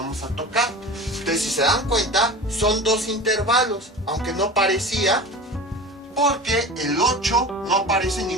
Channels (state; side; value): normal; both; correlation 0.34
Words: a tocar. Entonces, si se dan cuenta, son dos intervalos, aunque no parecía, porque el 8 no aparece en